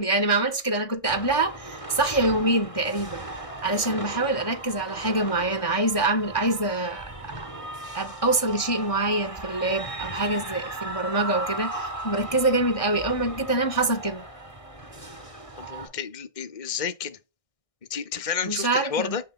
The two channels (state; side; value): late; right; 1.6 ms